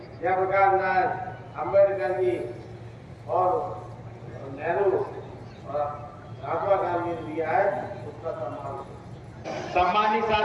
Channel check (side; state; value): both; identical; correlation 1.00